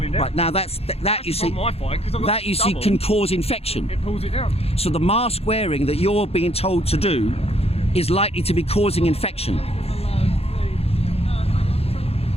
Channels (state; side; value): late; right; 0.29 ms